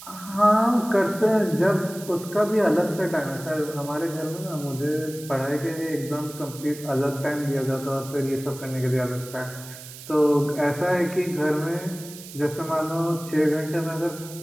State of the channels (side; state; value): right; noise; hiss, 15 dB below the sound